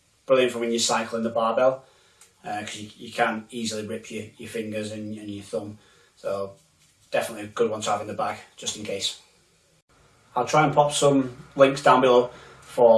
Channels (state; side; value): identical; both; correlation 1.00